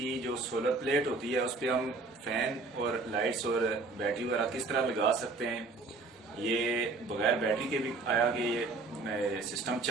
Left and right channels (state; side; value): quieter; left; 3.7 dB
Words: जो सोलर प्लेट होती है उस पर हम फैन और लाइट्स और बैटरी वगैरह किस तरह लगा सकते हैं। ये बगैर बैटरी के भी आया कि ये सिस्टम